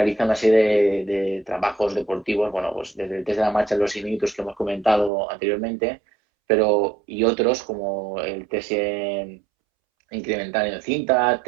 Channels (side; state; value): left; drops out; at 5.1 s